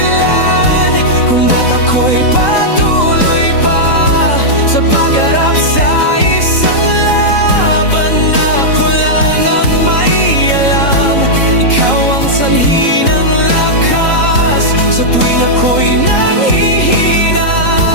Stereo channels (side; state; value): right; late; 3.8 ms